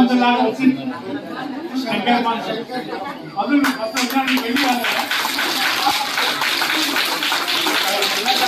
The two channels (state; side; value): identical; both; correlation 1.00